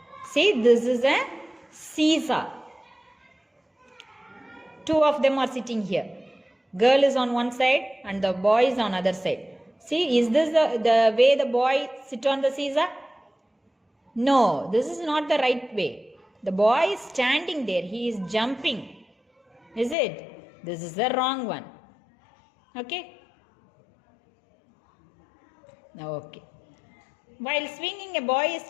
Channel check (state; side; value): drops out; right; at 20.0 s